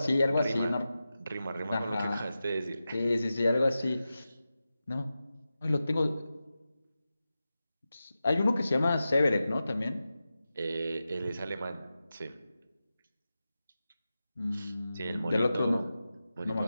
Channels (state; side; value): inverted; both; correlation -0.93